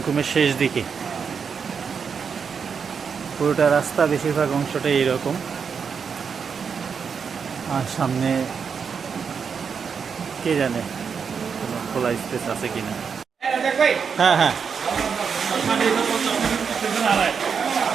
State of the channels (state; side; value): quieter; left; 6.3 dB